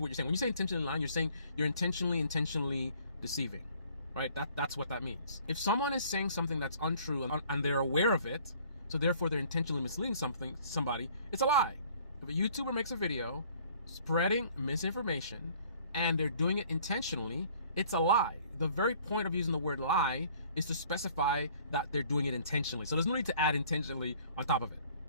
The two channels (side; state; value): both; inverted; correlation -0.56